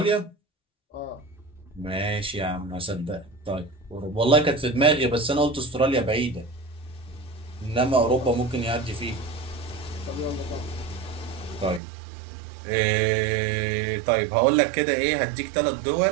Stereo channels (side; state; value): left; drops out; at 11.8 s